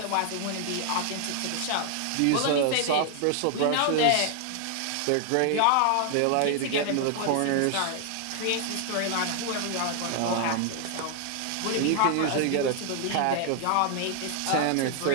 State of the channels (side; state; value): both; different; correlation 0.00